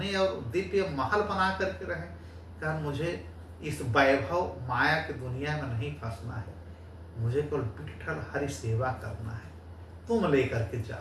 और दिव्य महल बना करके रहें, कारण मुझे इस वैभव माया की दुनिया में नहीं फंसना है, मुझे केवल विठ्ठल हरि सेवा करना है, तुम लेकर के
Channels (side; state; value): both; identical; correlation 1.00